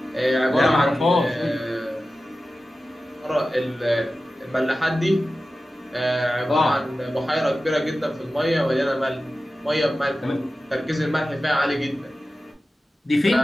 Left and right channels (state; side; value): normal; both; correlation 0.94